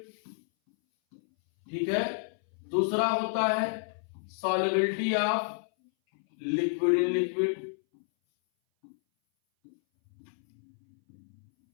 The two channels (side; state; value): right; silent; 58 dB below the other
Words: ठीक है। दूसरा होता है solubility of liquid in liquid,